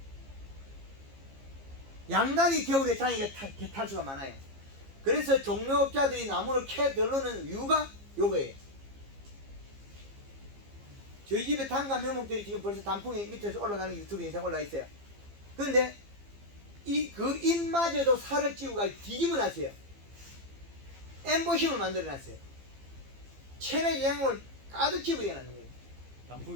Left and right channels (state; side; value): late; left; 15 ms